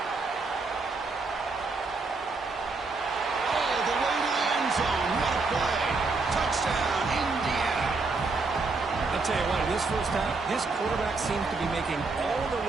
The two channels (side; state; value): left; quieter; 3.9 dB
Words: All the way to the end zone. What a play. Touchdown, Indiana. I'll tell you what, in this first half, this quarterback seems to be making all the